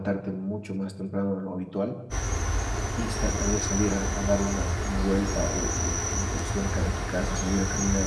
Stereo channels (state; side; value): identical; both; correlation 1.00